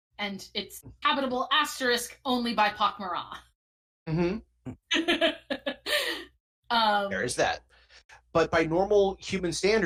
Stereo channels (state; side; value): identical; both; correlation 1.00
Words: and it's habitable * only by Pakmara. There is that. But by normal human